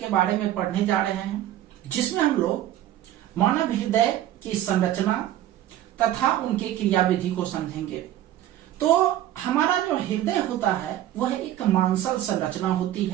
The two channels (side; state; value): left; quieter; 12.8 dB